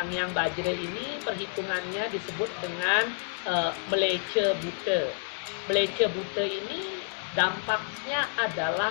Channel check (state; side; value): silent; right; digital silence